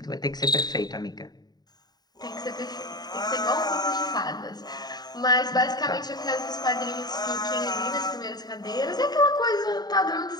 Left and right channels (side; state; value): right; late; 0.20 ms